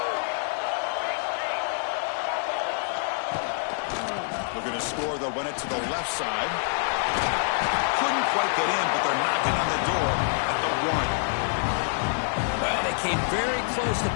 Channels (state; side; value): silent; right; digital silence